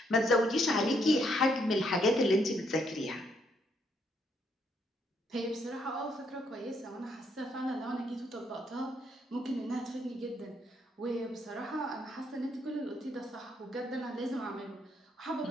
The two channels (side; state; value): both; normal; correlation 0.73